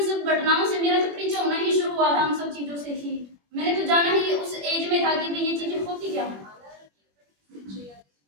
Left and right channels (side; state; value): left; late; 21 ms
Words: सब घटनाओं से, मेरा तो परिचय होना ही शुरू हुआ था उन सब चीजों से ही। मैंने तो जाना ही उस एज में था कि भाई ये चीजें होती क्या है।